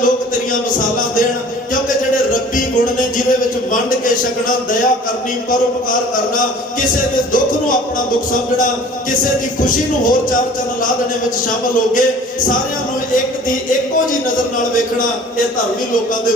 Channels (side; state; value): both; normal; correlation 0.47